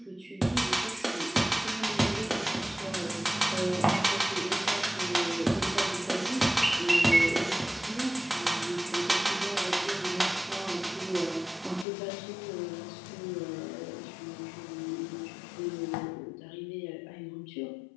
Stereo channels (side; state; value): right; drops out; at 11.9 s